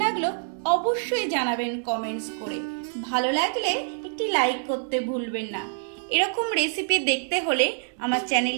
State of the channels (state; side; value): silent; left; digital silence